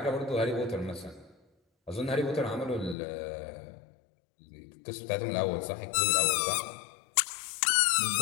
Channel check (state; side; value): drops out; right; at 3.0 s